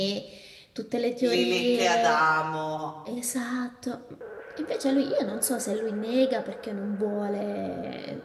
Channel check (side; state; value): both; identical; correlation 1.00